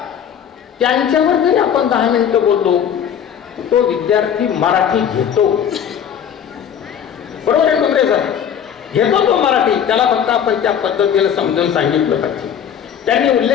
त्यांच्यावर जरी आपण 10 मिनिटं बोललो तो विद्यार्थी मराठी घेतो. बरोबर आहे कुंद्रे सर, घेतो तो मराठी, त्याला फक्त आपण त्या पद्धतीने समजून सांगितलं पाहिजे. त्यांनी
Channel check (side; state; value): right; quieter; 8.6 dB